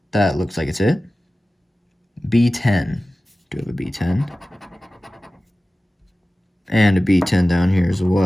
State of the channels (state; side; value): normal; both; correlation 0.96